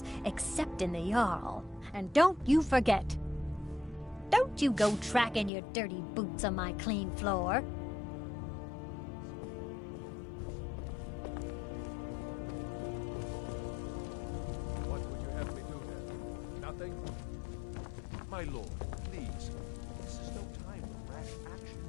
except in the Jarl. And don't you forget. Don't you go tracking your dirty boots on my clean floor. What would you have me do then? Nothing? My lord, please. This is no time for rash action.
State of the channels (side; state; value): right; drops out; at 5.5 s